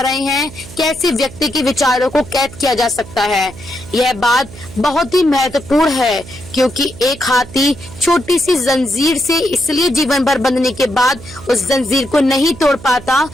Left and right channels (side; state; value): right; noise; hum, 17 dB below the sound